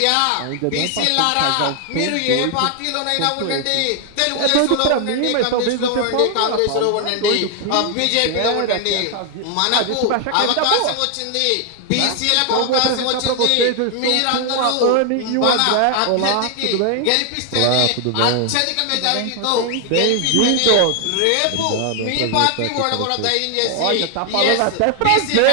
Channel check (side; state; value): both; different; correlation 0.00